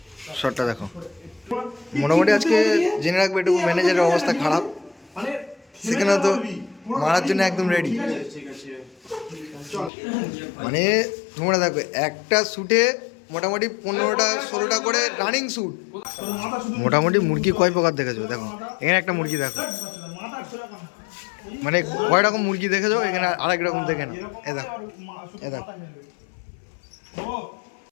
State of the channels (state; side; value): drops out; right; at 9.9 s